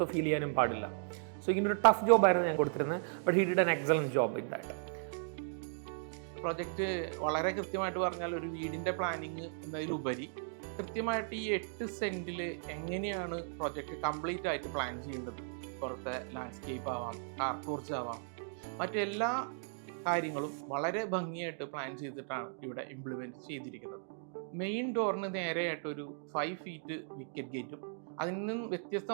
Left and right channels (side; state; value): left; silent; digital silence